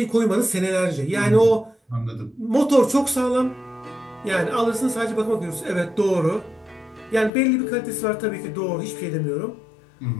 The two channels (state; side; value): drops out; right; at 7.3 s